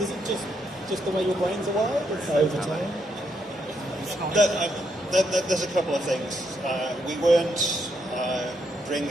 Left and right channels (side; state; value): both; normal; correlation 0.77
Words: Is it just the way your brains are wired? Over time? There's a couple of things. We weren't